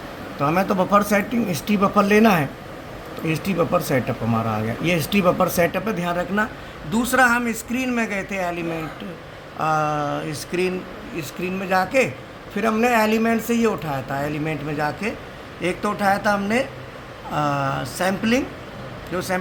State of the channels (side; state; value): both; identical; correlation 1.00